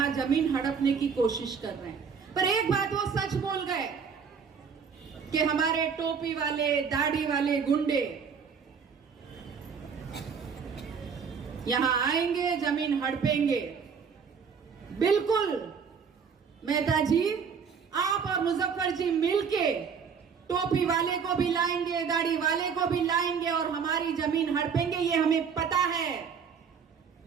जमीन हड़पने की कोशिश कर रहे हैं, पर एक बात वो सच बोल गए कि हमारे टोपी वाले, दाढ़ी वाले गुंडे यहां आएंगे, जमीन हड़पेंगे। बिल्कुल मेहता जी, आप और मुजफ्फर जी मिलके टोपी वाले को भी लाएंगे, दाढ़ी वाले को भी लाएंगे और हमारी जमीन हड़पेंगे, ये हमें पता है।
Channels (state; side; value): quieter; left; 6.4 dB